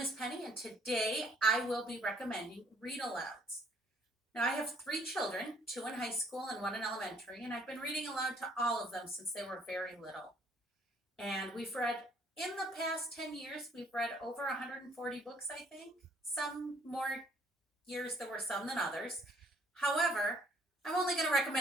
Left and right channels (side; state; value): both; normal; correlation 0.62